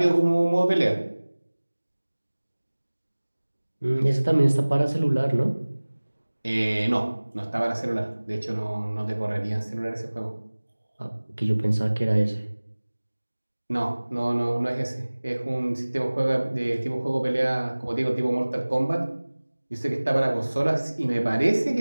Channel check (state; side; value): inverted; both; correlation -1.00